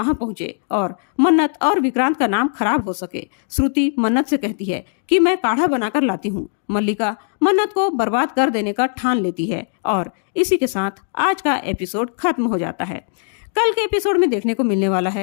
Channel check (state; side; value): silent; right; digital silence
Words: पहुंचे और मन्नत और विक्रांत का नाम खराब हो सके। श्रुति मन्नत से कहती है कि मैं काढ़ा बनाकर लाती हूँ। मल्लिका मन्नत को बर्बाद कर देने का ठान लेती है और इसी के साथ आज का एपिसोड खत्म हो जाता है। कल के एपिसोड में देखने को मिलने वाला